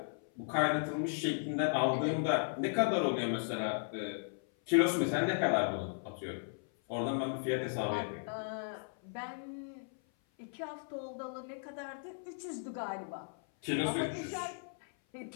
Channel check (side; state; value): right; silent; 54 dB below the other